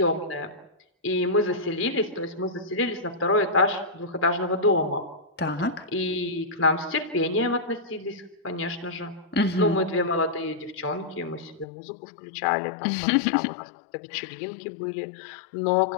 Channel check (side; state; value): right; drops out; at 11.7 s